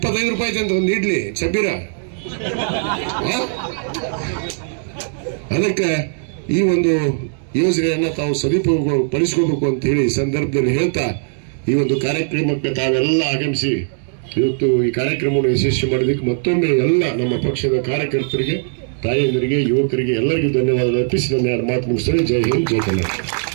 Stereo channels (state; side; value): silent; left; digital silence